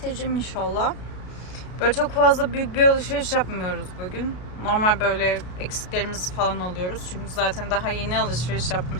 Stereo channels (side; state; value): right; late; 33 ms